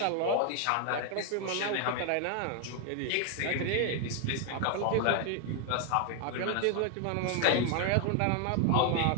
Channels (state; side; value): different; both; correlation 0.00